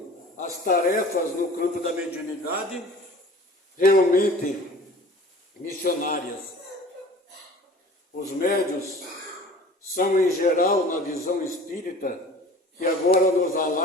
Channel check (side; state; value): both; normal; correlation 0.44